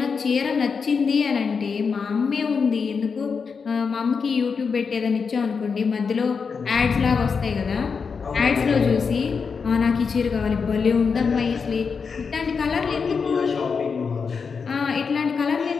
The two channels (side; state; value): right; quieter; 5.5 dB